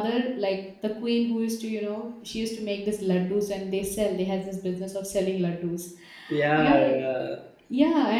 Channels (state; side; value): identical; both; correlation 1.00